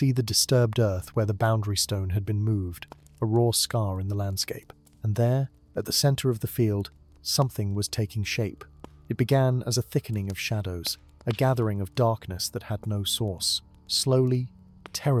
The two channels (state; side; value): identical; both; correlation 1.00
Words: the disturbed earth where the boundary stone had been moved, a raw scar in the landscape. And there, at the center of the field, something was taking shape. It began as a thickening of shadows, a gathering of darkness that had no source. Slowly,